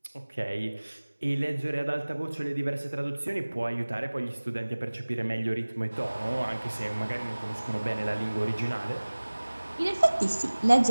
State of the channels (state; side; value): inverted; both; correlation -1.00